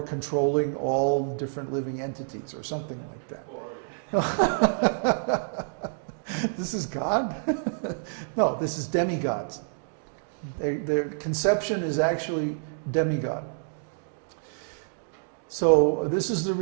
controlling all different living entities, or something like that. This is God? No, this is demigods. Their conception is actually demigod. So this is the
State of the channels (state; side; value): silent; left; digital silence